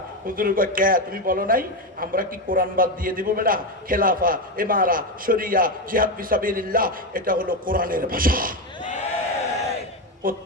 হুজুর কয় কে তুমি বলো নাই? আমরা কি কোরআন বাদ দিয়ে দিব বেটা? খেলাফা, ইমারা, শরিয়া, জিহাদ ফি সাবিলিল্লাহ এটা হলো কোরআনের ভাষা।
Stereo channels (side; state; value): both; normal; correlation 0.12